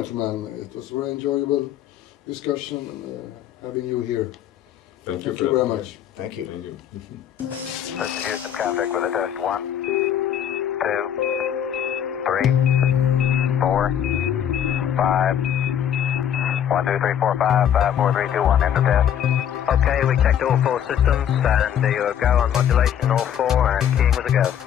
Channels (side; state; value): right; quieter; 9.5 dB